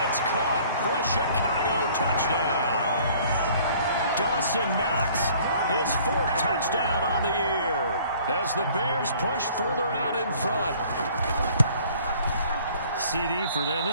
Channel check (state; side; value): inverted; both; correlation -0.55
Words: it's caught for a Chicago touchdown. Dawson Knox, his 4th touchdown on the year, as the Bears push further out in front. CD for them.